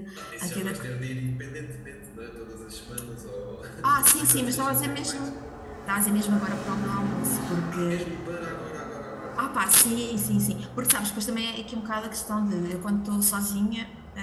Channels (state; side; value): identical; both; correlation 1.00